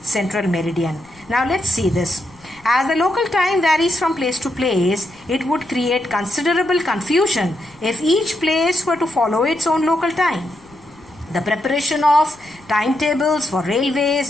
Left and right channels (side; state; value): left; noise; rumble, 28 dB below the sound